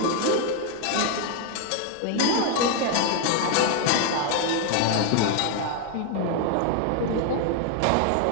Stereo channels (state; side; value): different; both; correlation 0.00